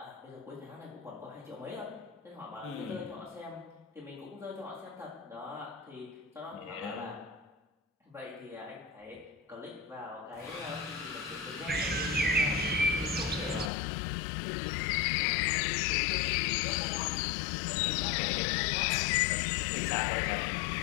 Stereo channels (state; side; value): drops out; right; at 13.7 s